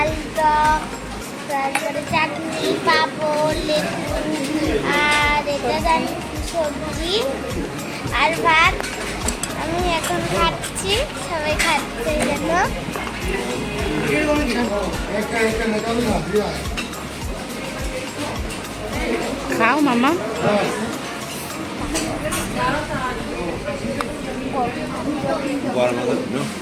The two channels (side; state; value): both; identical; correlation 1.00